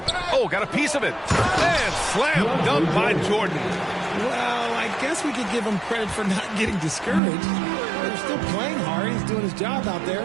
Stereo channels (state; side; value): drops out; left; at 7.2 s